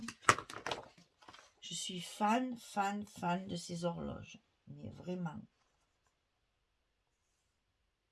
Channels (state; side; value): identical; both; correlation 1.00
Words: Je suis fan de ces horloges. Mais vraiment.